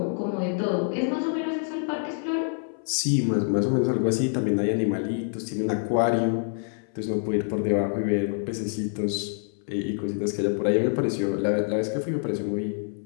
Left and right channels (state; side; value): silent; right; 61 dB below the other